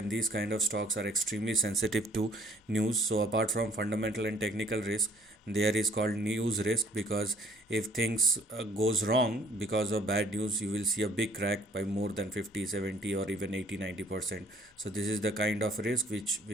these kind of stocks are extremely sensitive to news. So apart from fundamental and technical risk, there is called news risk, because if things goes wrong because of bad news, you will see a big crack by more than 50, 70 or even 80, 90%. So this is the kind of risk which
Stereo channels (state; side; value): normal; both; correlation 0.59